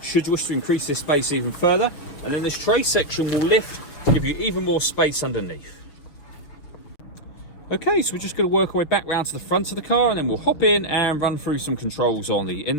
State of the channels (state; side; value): late; right; 6.4 ms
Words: you wish to increase this space even further. And then this tray section will lift to give you even more space underneath. Okay, so we're just going to work our way back round to the front of the car, and then we'll hop in and run through some controls on the